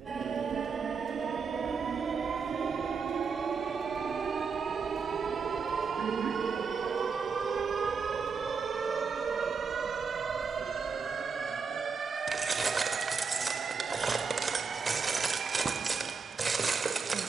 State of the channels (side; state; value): left; quieter; 5.4 dB